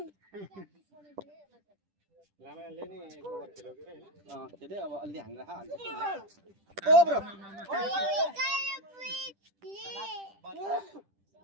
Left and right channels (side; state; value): left; late; 10 ms